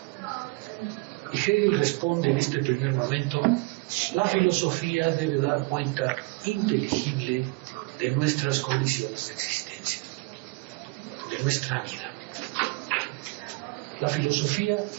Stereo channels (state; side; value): quieter; left; 26.8 dB